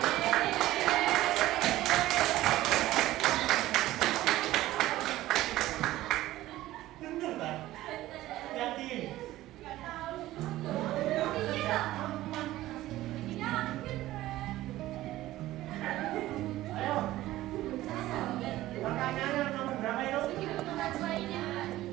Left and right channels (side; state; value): left; quieter; 15.8 dB